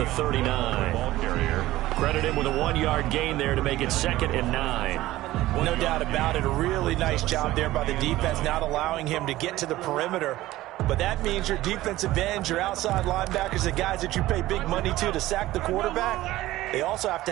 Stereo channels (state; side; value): quieter; left; 16.4 dB